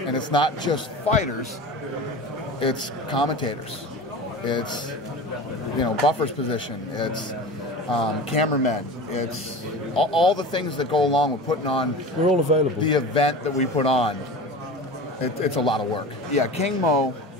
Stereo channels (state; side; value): normal; both; correlation 0.33